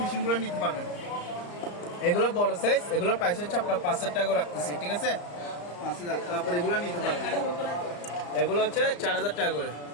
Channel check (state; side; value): late; right; 34 ms